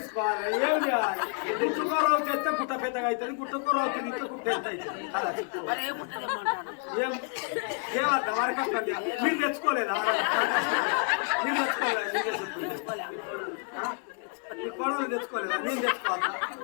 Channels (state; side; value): quieter; right; 38.0 dB